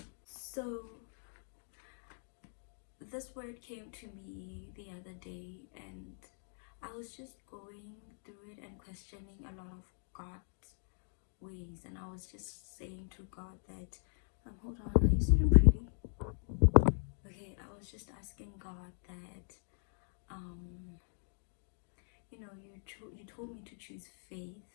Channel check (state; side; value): silent; right; digital silence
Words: So this word came to me the other day, and I was just going through it and questioning a lot of God's ways, and I was just saying to God that hold on, are you sitting pretty? Okay, I was just asking God that you told me to choose